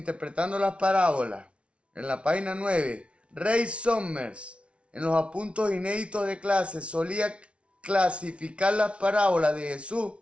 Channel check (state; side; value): late; left; 0.060 ms